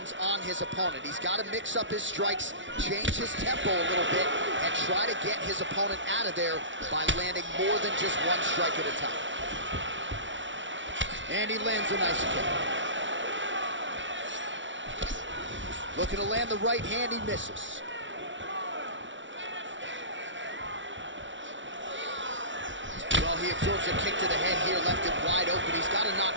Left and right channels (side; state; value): left; late; 0.55 ms